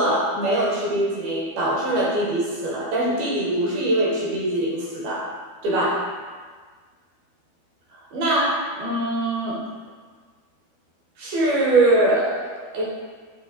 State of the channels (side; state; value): left; late; 12 ms